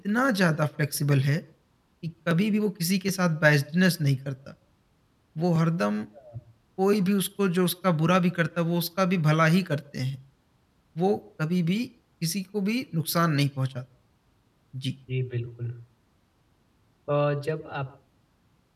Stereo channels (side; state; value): both; identical; correlation 1.00